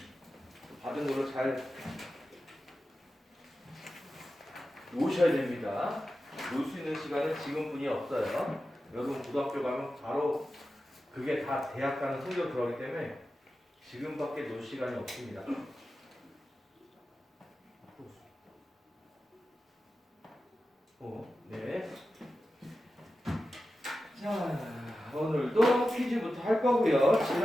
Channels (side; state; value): both; normal; correlation 0.92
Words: 받은 걸로 잘 놓으셔야 됩니다. 놓을 수 있는 시간은 지금뿐이 없어요. 여러분 고등학교 가면 바로 그게 다 대학 가는 성적 들어가기 때문에 지금밖에 놓을 시간이 없습니다. 네. 자, 오늘도 퀴즈부터 할 거고요.